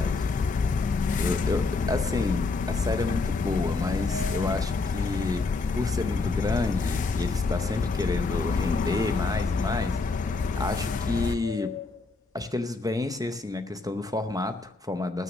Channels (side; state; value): right; quieter; 3.7 dB